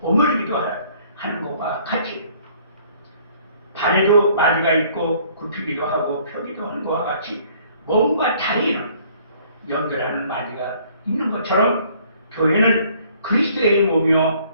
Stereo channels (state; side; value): inverted; both; correlation -0.59